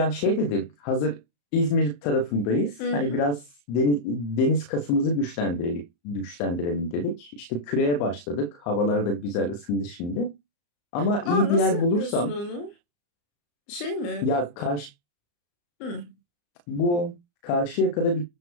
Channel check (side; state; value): right; late; 34 ms